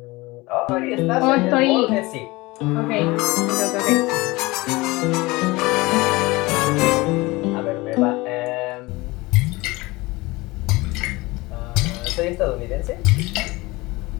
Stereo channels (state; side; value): quieter; right; 22.0 dB